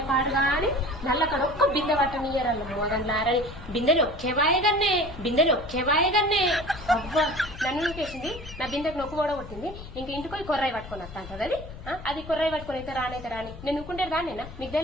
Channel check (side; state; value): left; noise; rumble, 13 dB below the sound